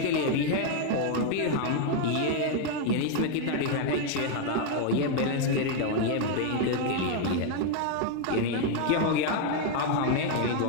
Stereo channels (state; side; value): different; both; correlation 0.01